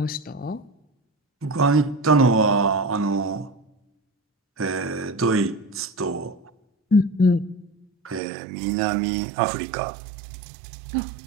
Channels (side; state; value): left; drops out; at 8.2 s